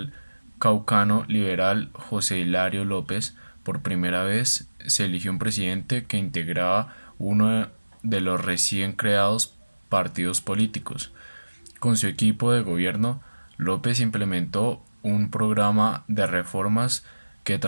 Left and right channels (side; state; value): both; inverted; correlation -1.00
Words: caucano liberal José Hilario López. Por primera vez se eligió un presidente que integraba uno de los recién creados partidos políticos. Con su equipo de gobierno, López implementó un programa de reformas que